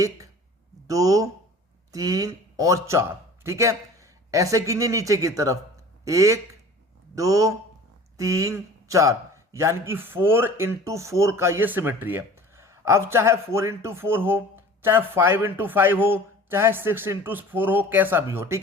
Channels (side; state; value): both; normal; correlation 0.43